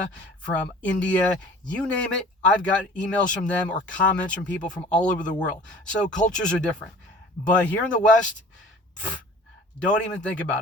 from India, you name it. I've got emails from them or comments from people from all over the world. So cultures are different. But here in the West, don't even think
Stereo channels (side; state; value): both; normal; correlation 0.46